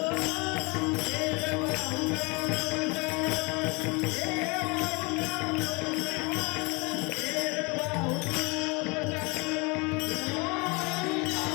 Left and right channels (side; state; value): right; quieter; 28.9 dB